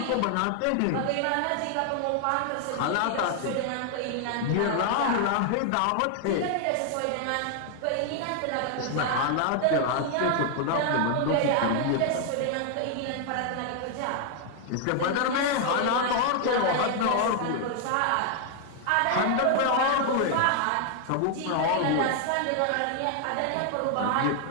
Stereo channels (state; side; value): different; both; correlation 0.00